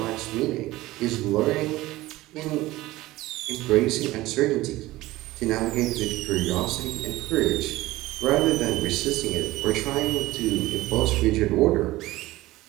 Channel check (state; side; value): quieter; left; 17.9 dB